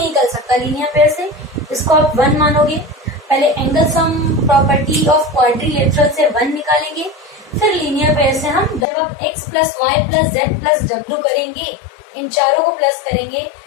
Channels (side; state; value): right; drops out; at 8.8 s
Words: निकल सकता लीनियर पेयर से, इसको आप 1 मानोगे। पहले angle sum property of quadrilateral से 1 निकालेंगे, फिर लीनियर पेयर से हम जब आप x plus y plus z plus डब्ल्यू करेंगे, इन चारों को प्लस करेंगे,